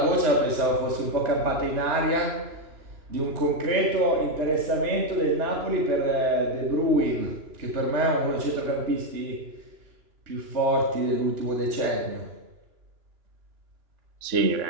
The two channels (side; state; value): left; late; 2.9 ms